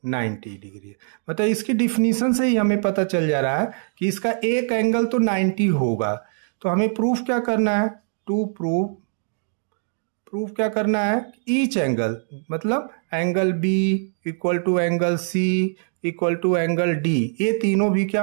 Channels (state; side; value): silent; left; 64 dB below the other